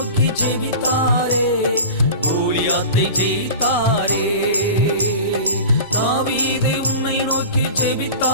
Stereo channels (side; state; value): both; inverted; correlation -0.35